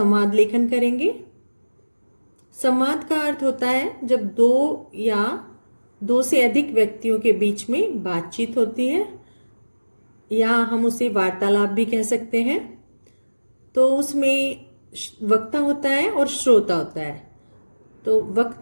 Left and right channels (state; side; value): inverted; both; correlation -1.00